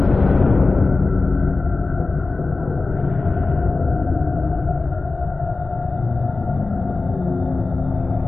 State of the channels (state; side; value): quieter; right; 3.6 dB